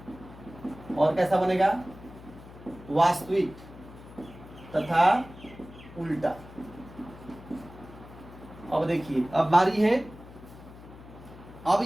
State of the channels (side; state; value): left; noise; hum, 18 dB below the sound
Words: और कैसा बनेगा, वास्तविक तथा उल्टा। अब देखिए अब बारी है, अब